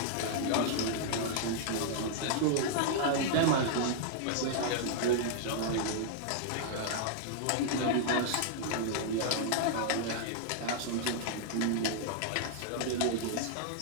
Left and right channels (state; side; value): different; both; correlation -0.01